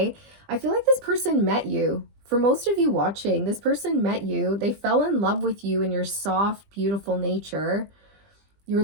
I feel like this person met you. For most of you watching, this person met you. They fell in love with you and your soft, beautiful nature, your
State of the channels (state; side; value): late; left; 20 ms